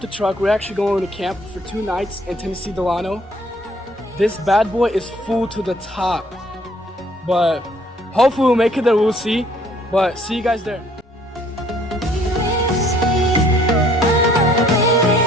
truck. We're actually going to camp for 2 nights in Tennessee Delano. This bad boy is full to the top, but hopefully we'll make it there. We'll see. But see you guys there.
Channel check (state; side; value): normal; both; correlation 0.60